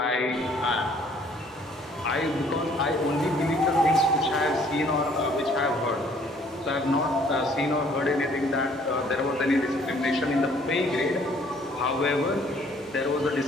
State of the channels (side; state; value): both; normal; correlation 0.60